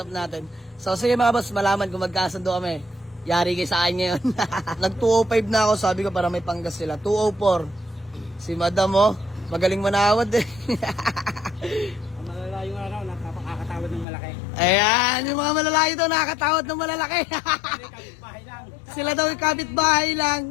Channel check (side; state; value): right; drops out; at 14.1 s